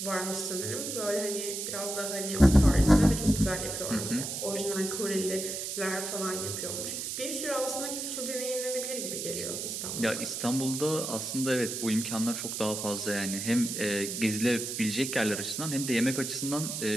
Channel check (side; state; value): right; noise; hiss, 4 dB below the sound